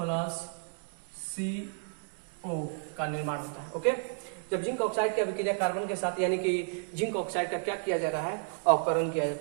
CO का निर्माण होता है। ओके, जब जिंक ऑक्साइड की अभिक्रिया कार्बन के साथ, यानी कि जिंक ऑक्साइड का क्या किया जा रहा है? अवकरण किया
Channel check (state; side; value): silent; left; 57 dB below the other